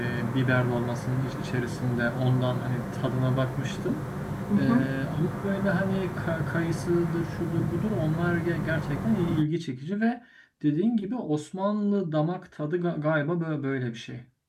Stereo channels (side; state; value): both; identical; correlation 1.00